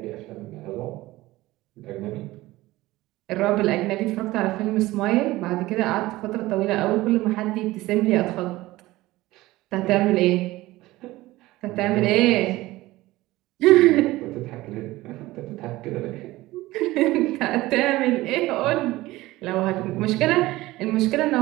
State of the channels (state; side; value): quieter; left; 18.2 dB